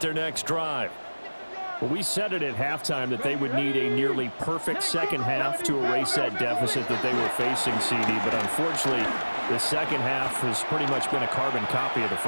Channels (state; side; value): inverted; both; correlation -1.00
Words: next drive. Well, we said it at halftime that they would need a nearly perfect second half to erase that deficit that they were facing, CD. But unfortunately, the second half has pretty much been a carbon copy of the